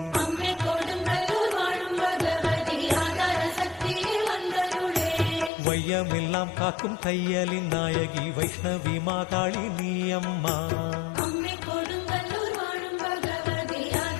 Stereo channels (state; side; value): drops out; right; at 5.5 s